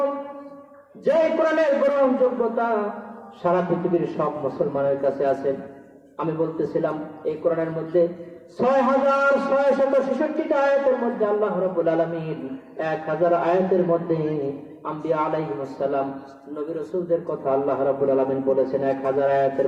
যে কোরআনের গ্রহণযোগ্যতা সারা পৃথিবীর সব মুসলমানের কাছে আছে। আমি বলতেছিলাম এই কোরআনের মধ্যে 6666টা আয়াতের মধ্যে আল্লাহ রাব্বুল আলামিন 1000 আয়াতের মধ্যে আম্বিয়া আলাইহিস সালাম নবী রাসূলদের কথা আল্লাহ রাব্বুল আলামিন বলেছেন 1000 আয়াতের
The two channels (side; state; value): both; identical; correlation 1.00